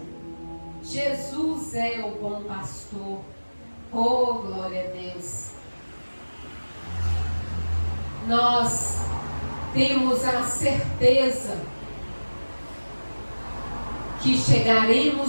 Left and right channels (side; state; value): both; inverted; correlation -1.00